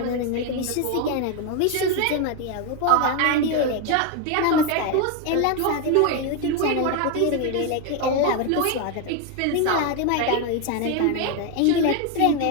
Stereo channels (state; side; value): different; both; correlation 0.02